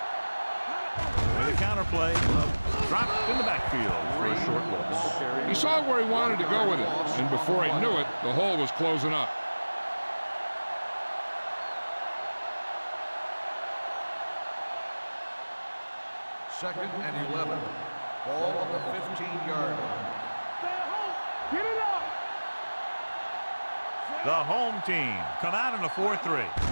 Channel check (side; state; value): both; inverted; correlation -1.00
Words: With a counter play, dropped in the backfield for a short loss. He saw where he wanted to go with it, and before he knew it, the hole was closing up. Second and 11. Ball on the 15-yard line. Stay at home. Get it up. The home team come out in a 4-3.